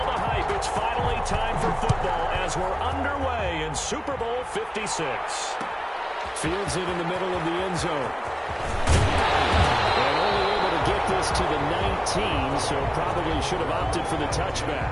the hype, it's finally time for football as we're underway in Super Bowl 56. Fields it in the middle of the end zone. And only able to get this to the 19, so probably should have opted for the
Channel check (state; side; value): identical; both; correlation 1.00